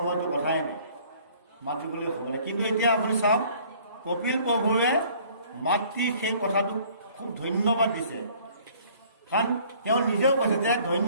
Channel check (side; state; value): both; inverted; correlation -0.56